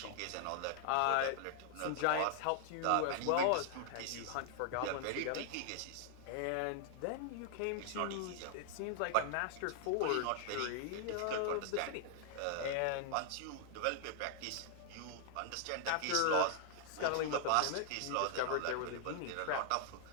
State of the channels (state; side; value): different; both; correlation 0.00